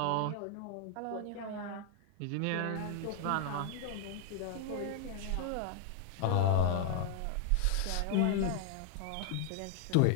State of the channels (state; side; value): different; both; correlation 0.00